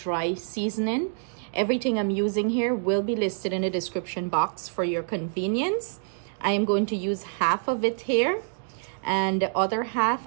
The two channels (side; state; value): left; silent; digital silence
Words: seasoning. Everything I'm using here will be listed in the description box for your convenience. I am going to use half of it here, and the other half